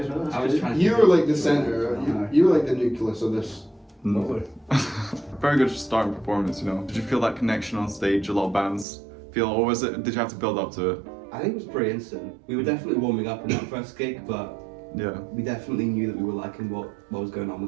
as well, that's I was good. trying to. You were like the center. You were like the nucleus of this. Lovely. Very good starting performance, you know. Did you feel that connection on stage? A lot of bands feel, or was it? Did you have to build up to it? I think it was pretty instant. We were definitely warming up in that first gig, but Yeah. we definitely knew that we were liking what was going on with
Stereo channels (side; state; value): left; drops out; at 8.8 s